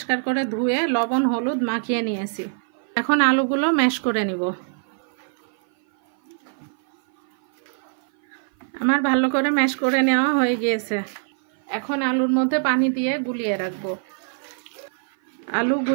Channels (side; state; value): left; silent; 56 dB below the other